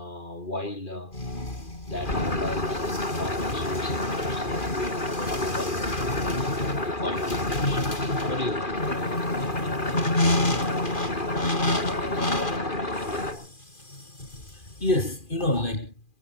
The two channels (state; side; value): late; right; 2.4 ms